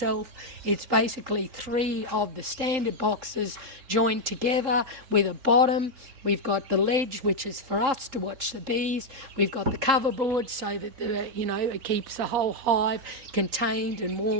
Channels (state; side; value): late; left; 3.7 ms